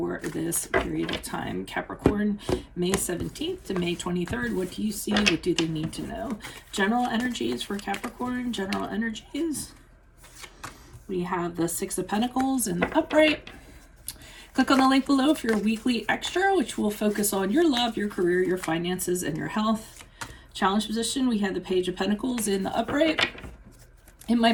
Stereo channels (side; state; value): both; identical; correlation 1.00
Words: this period of time. Capricorn, May 17th to May 23rd. What do you see? What do they need to know? General energies for Capricorn. General energies. We have the Six of Pentacles in the upright. Click on the link below for your weekly extra, which will focus on your love, your career, your finances, and your health. Challenge position, we have the Page of Pentacles in the upright. In my